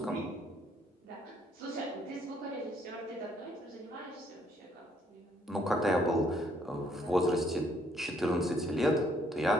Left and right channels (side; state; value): both; normal; correlation 0.67